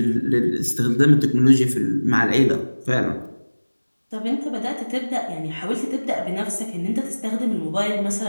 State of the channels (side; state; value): both; inverted; correlation -1.00